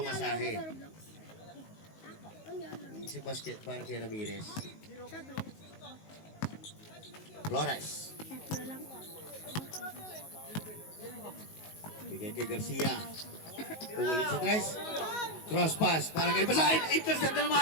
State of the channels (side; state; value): right; late; 19 ms